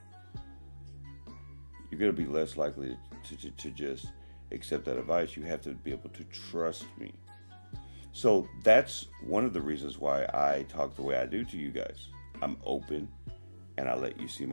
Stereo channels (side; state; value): both; inverted; correlation -1.00